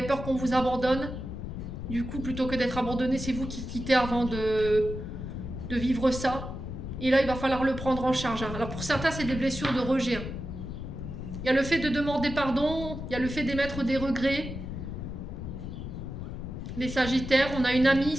peur qu'on vous abandonne. Du coup, plutôt que d'être abandonné, c'est vous qui quittez avant de vivre ça. Et là, il va falloir le prendre en charge. Hein. Alors pour certains, c'est des blessures de rejet. Hein. Il y a le fait de demander pardon, il y a le fait d'émettre des regrets. Les Sagittaires, on a une amie,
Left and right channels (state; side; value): noise; left; rumble, 7 dB below the sound